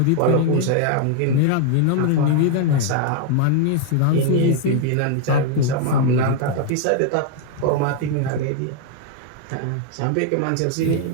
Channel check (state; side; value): different; both; correlation 0.00